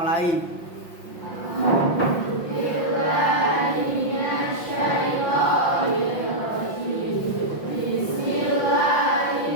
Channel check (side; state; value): right; late; 5.7 ms